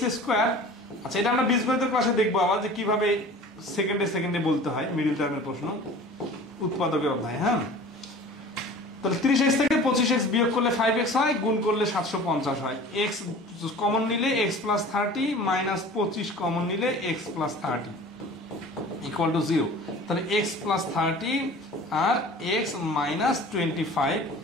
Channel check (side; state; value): both; normal; correlation 0.42